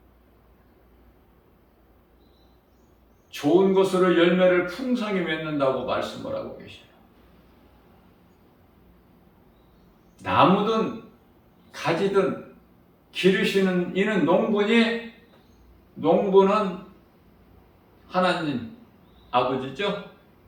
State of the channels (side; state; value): both; identical; correlation 1.00